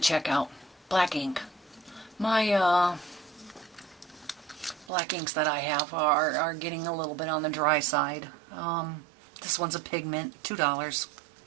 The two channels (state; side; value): drops out; left; at 4.9 s